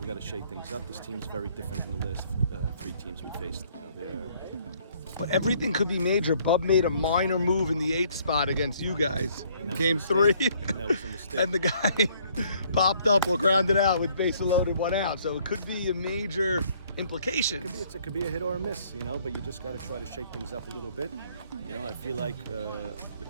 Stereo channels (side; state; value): both; inverted; correlation -0.63